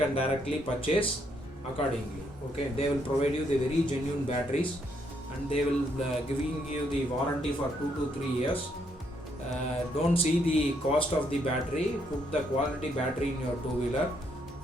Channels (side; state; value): both; normal; correlation 0.73